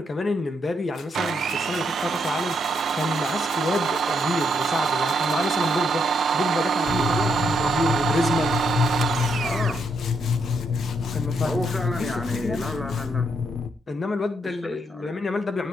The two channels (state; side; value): normal; both; correlation 0.76